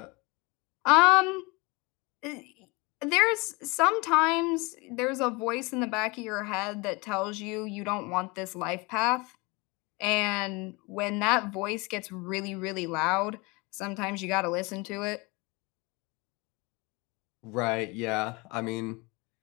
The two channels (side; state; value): right; quieter; 26.5 dB